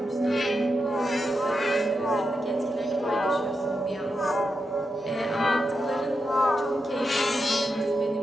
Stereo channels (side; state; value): both; normal; correlation 0.87